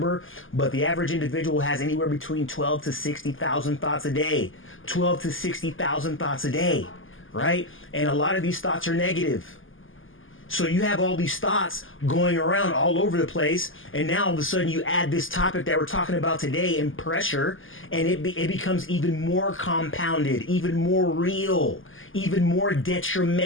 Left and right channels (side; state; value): right; late; 0.58 ms